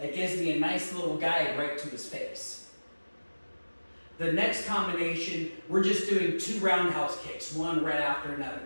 gives me a nice little guide right to his face. The next combination, we're just doing 2 roundhouse kicks, one right after another.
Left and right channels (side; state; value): both; inverted; correlation -1.00